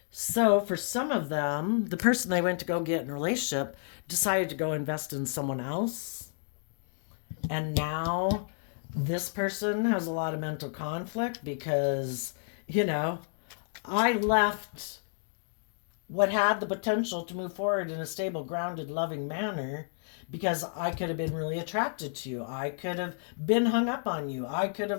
So for some of them, the person they went to go get in a relationship decided to go invest in someone else. And now this person has a lot of mental conflict because, I left what had the potential to move forward in a stable, grounded, loving manner because I could have been really attracted to you. I could have been hung up on you. I could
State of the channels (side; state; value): right; silent; digital silence